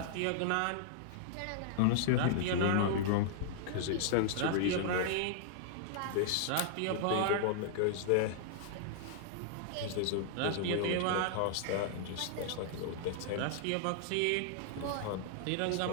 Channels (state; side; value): different; both; correlation -0.01